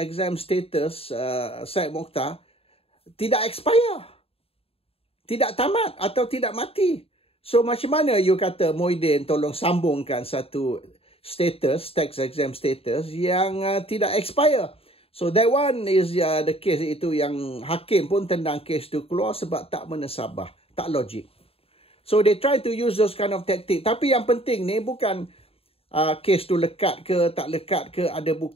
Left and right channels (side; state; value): right; late; 0.28 ms